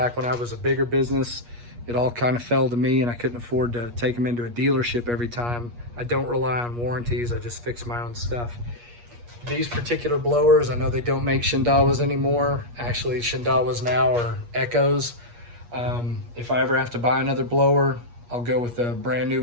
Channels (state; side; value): late; left; 8.4 ms